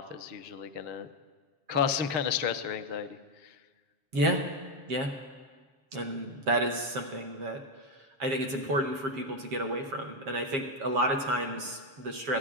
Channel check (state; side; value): late; left; 7.4 ms